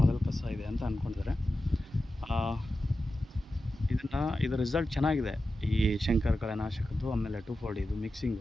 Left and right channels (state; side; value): normal; both; correlation 0.92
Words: ಕಸ ಇದೆ ಅಂತ ಅಂದ್ಕೊಂಡಿದ್ದಾರೆ. ಇದರ ರಿಸಲ್ಟ್ ಚೆನ್ನಾಗಿದೆ, ಈ ಶಂಕರ್ ಕಳೆನಾಶಕದ್ದು ಆಮೇಲೆ 2,4-D ಇದು